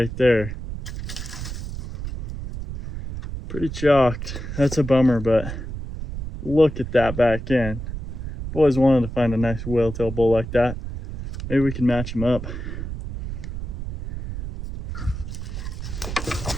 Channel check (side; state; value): right; noise; rumble, 7 dB below the sound